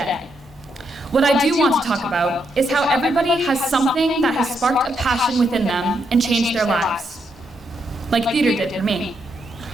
What I do want to talk about is how everybody has something that has sparked a passion within them and changed their lives, like theater did for me.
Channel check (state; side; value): normal; both; correlation 0.79